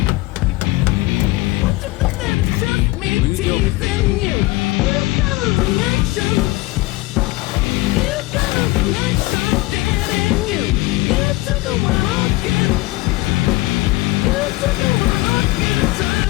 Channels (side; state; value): right; quieter; 20.4 dB